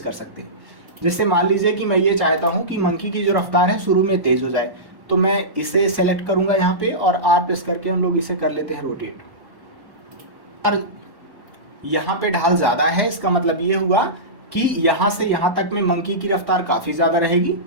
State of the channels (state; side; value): late; left; 1.1 ms